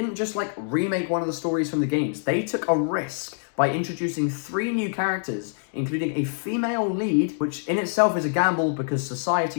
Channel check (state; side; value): silent; right; digital silence